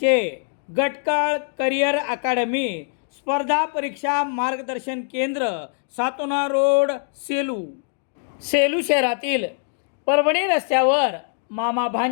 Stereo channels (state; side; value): silent; right; digital silence